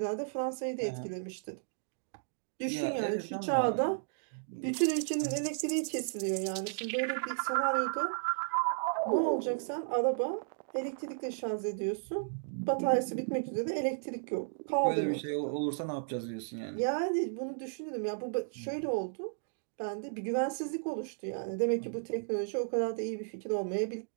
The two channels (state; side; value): silent; left; digital silence